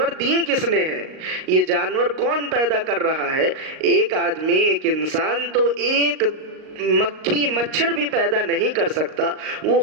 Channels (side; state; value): left; late; 38 ms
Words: دیے کس نے ہیں؟ یہ جانور کون پیدا کر رہا ہے؟ ایک آدمی، ایک انسان تو ایک مکھی مچھر بھی پیدا نہیں کر سکتا، وہ